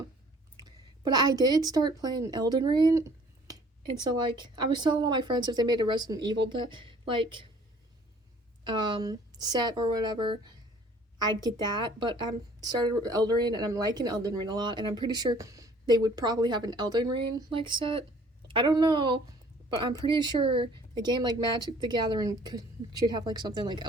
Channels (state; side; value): normal; both; correlation 0.54